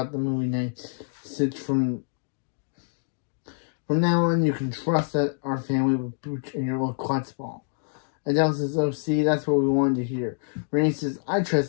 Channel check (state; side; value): silent; right; digital silence